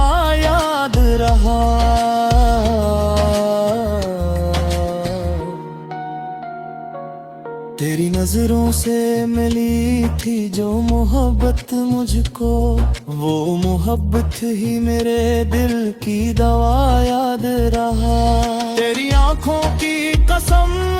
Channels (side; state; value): both; identical; correlation 1.00